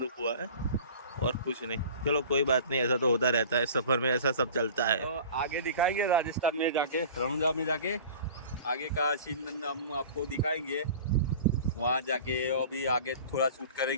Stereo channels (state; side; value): inverted; both; correlation -0.41